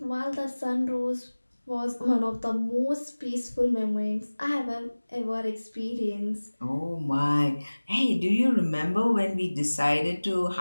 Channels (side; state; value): both; inverted; correlation -1.00